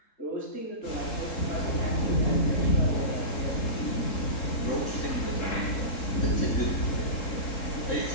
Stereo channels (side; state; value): right; late; 3.7 ms